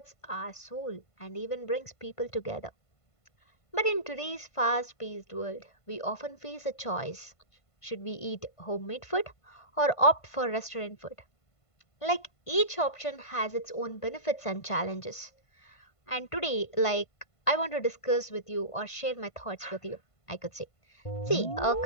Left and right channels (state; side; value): late; right; 1.5 ms